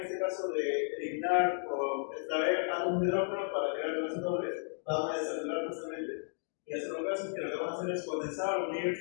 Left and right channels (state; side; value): silent; right; digital silence